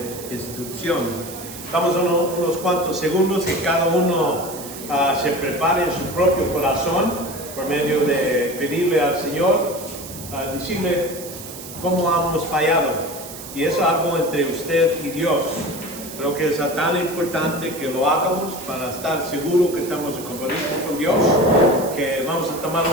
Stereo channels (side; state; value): right; noise; hiss, 13 dB below the sound